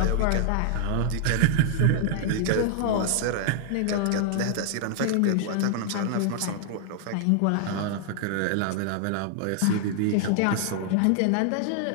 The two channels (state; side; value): different; both; correlation 0.00